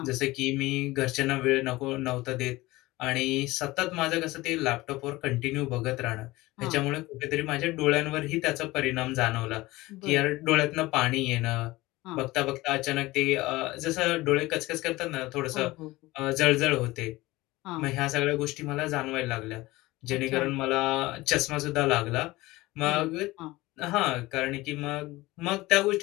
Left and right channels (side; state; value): right; quieter; 19.7 dB